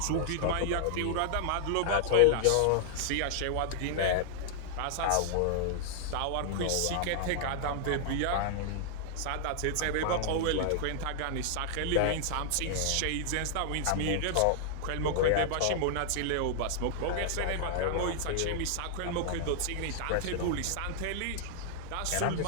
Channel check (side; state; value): both; different; correlation -0.01